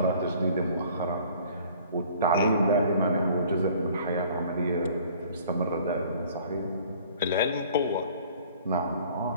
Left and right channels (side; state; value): both; inverted; correlation -0.52